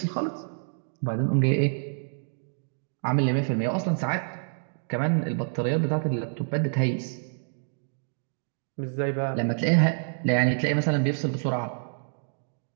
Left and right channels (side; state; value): left; silent; digital silence